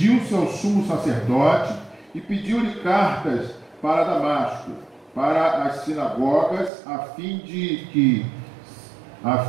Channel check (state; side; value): drops out; left; at 6.7 s